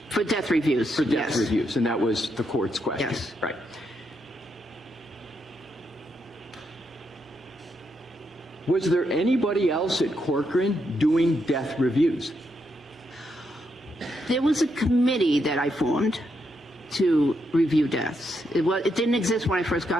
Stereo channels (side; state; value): both; normal; correlation 0.80